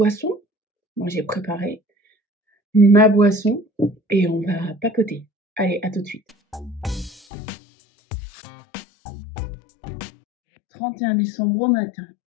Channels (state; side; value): drops out; right; at 7.2 s